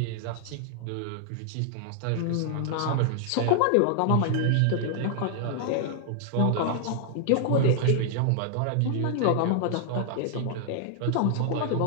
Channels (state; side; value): different; both; correlation 0.00